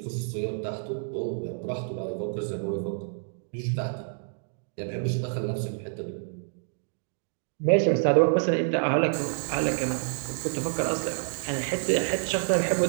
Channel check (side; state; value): left; silent; digital silence